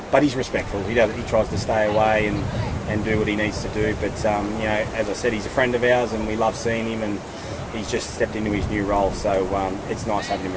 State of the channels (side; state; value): both; identical; correlation 1.00